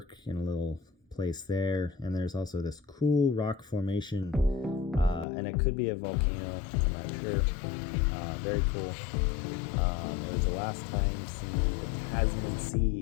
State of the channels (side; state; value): right; drops out; at 5.2 s